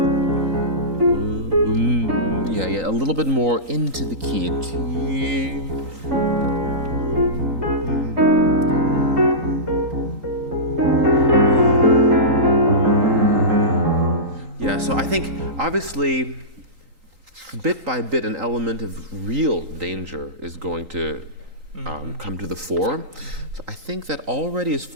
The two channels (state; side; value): late; left; 3.8 ms